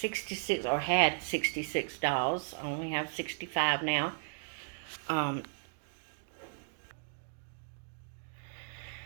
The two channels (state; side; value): silent; left; digital silence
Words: or had 66 dolls. I only have 65 now.